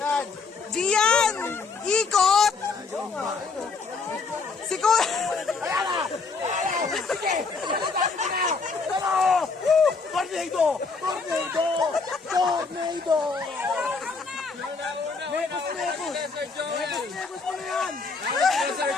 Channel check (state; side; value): quieter; right; 4.5 dB